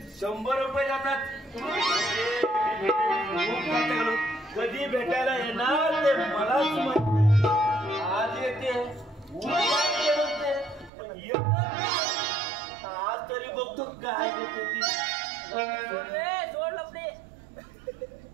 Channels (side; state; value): left; drops out; at 10.9 s